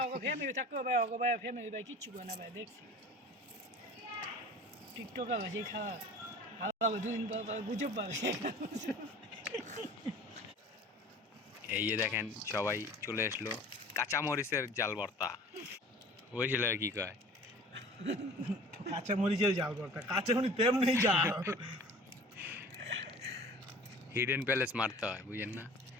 ওগো ফ্যামিলি থাকো ভাই ওগো ভাই ফ্যামিলি ভাই কিচ্ছু করে না ভাই দেখছি টিকটক আছে খাওয়া আলাদা দুদিন পর গুজব পাবে। এই যে দেখেন সবাই চলে আসলো, কাঁচা মরিচের জাল ভর্তা। ওই ছেলে কি কয়, কাঁচা মরিচের জাল ভর্তা। কাঁচা মরিচ তেমনি জাল, হিডেন প্যালেস মারতে হয়, বুঝেন না?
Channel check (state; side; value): normal; both; correlation 0.43